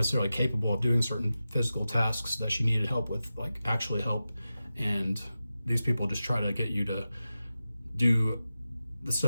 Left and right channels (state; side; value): inverted; both; correlation -0.93